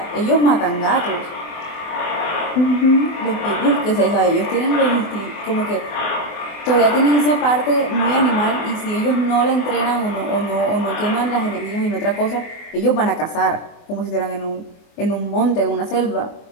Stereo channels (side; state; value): right; late; 24 ms